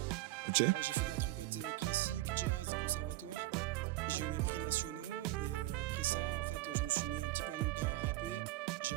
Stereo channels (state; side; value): quieter; left; 17.4 dB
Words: Ok. J'ai fait de la trompette classique, jazz, conservatoire. J'ai eu mes prix nationaux et après ça, en fait, je me suis mis un petit peu en même temps à rapper. J'ai